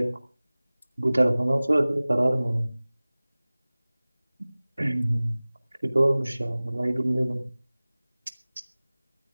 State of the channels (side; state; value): both; inverted; correlation -0.99